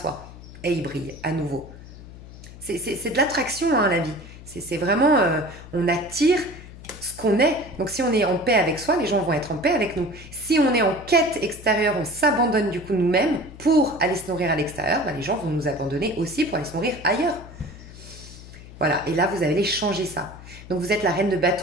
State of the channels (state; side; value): noise; left; hum, 16 dB below the sound